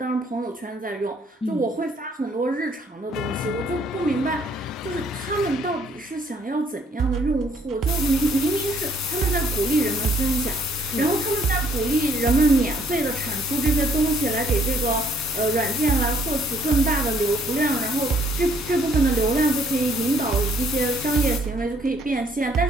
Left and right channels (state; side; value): normal; both; correlation 0.65